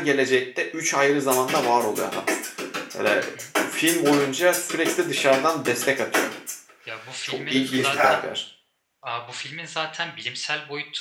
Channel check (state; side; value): identical; both; correlation 1.00